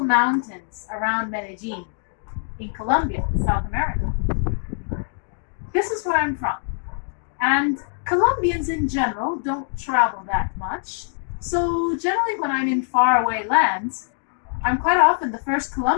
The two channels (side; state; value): right; silent; digital silence